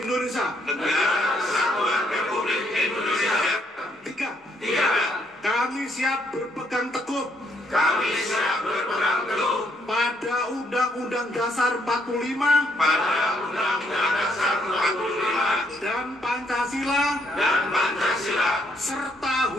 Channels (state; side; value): normal; both; correlation 0.71